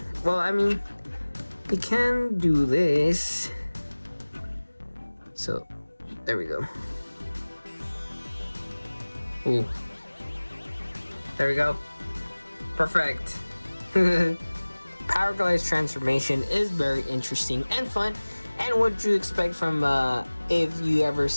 well, I mean, he can do this. So there we go. Ooh. There we go. Perfect. Powerglide's transformation is very interesting and fun, and what you expect from if you ever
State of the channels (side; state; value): both; inverted; correlation -1.00